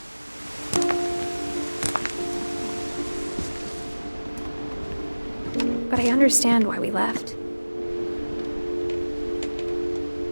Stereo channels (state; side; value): inverted; both; correlation -1.00